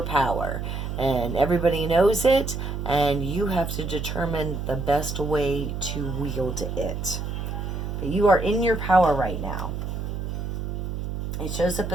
power. And everybody knows it, and you have to determine the best way to wield it. But you are in your power right now. It shows up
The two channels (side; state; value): right; noise; hum, 4 dB below the sound